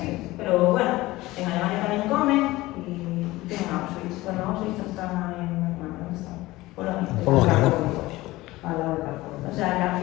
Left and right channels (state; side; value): quieter; right; 18.8 dB